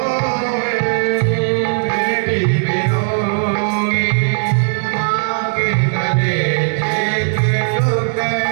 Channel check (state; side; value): silent; left; digital silence